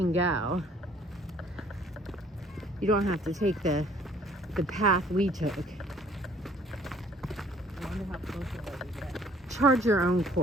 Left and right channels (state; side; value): normal; both; correlation 0.58